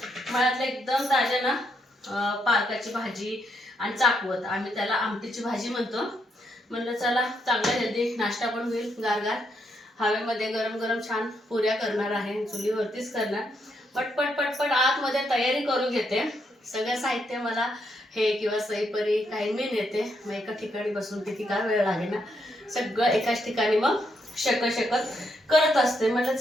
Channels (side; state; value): both; normal; correlation 0.77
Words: मळ्यातलं एकदम ताज्या ना पालकाची भाजी आणि चाकवत, आम्ही त्याला आमटीची भाजी म्हणतो. म्हणलं चला चांगला हेल्दी नाश्ता पण होईल. गारगार हवेमध्ये गरम गरम छान पुऱ्या करणार आहे. चुलीवरतीच करणार. पटपट पटपट आतमध्ये तयारी करून घेते. सगळं साहित्य मला हे किंवा सईपरी काही मी नेते. मग एका ठिकाणी बसून किती काय वेळ लागे ना. सगळं एकाच ठिकाणी मग शकत करत असते. म्हटलं